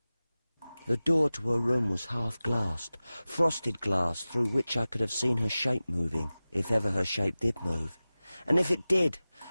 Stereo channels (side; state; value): both; inverted; correlation -0.97